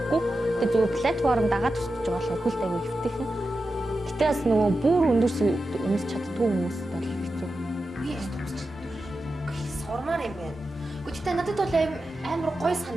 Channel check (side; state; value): both; normal; correlation 0.91